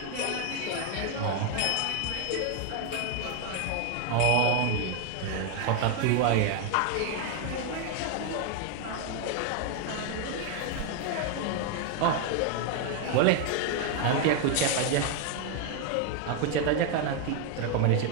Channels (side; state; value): both; different; correlation 0.01